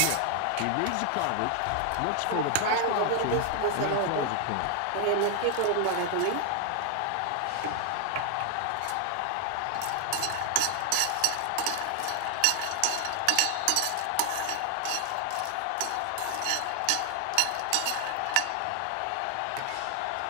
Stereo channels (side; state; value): both; different; correlation 0.00